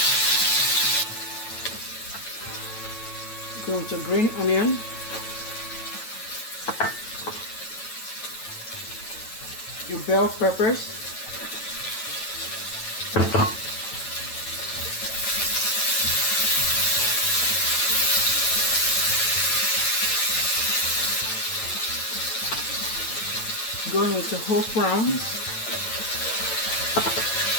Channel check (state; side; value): late; right; 9.0 ms